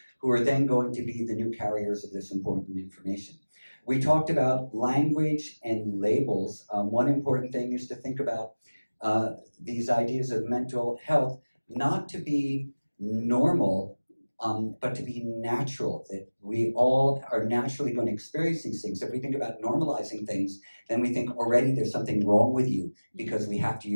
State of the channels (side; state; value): both; inverted; correlation -1.00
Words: who are then going to be the new carriers of this important information. We talked about language and labels. One important thing is to think about these ideas of mental health, not to be normal, but to be natural, that we all are naturally going to experience these things. If we think about normalizing things, then we think already there's something wrong with you because we have to